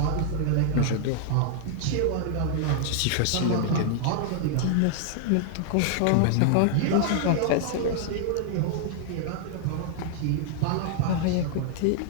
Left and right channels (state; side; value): different; both; correlation -0.01